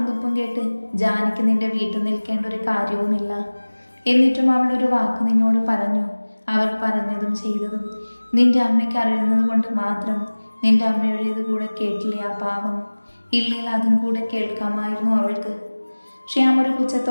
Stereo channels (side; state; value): both; inverted; correlation -1.00